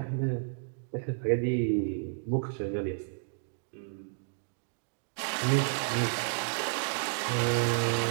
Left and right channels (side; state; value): left; silent; digital silence